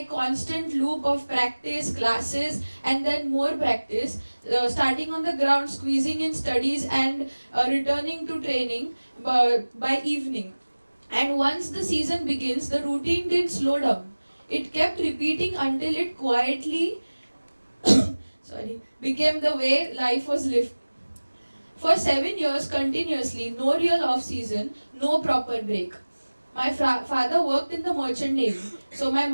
constant loop of practice, classes, and then more practice, starting on the ground, squeezing in studies, and returning to training by evening. And once the season begins, the routine didn't slow down. It kept repeating until it quietly became the way life was lived. For 7 years continuously, no real off season, no proper break. My father worked in the merchant navy, so my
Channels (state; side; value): inverted; both; correlation -1.00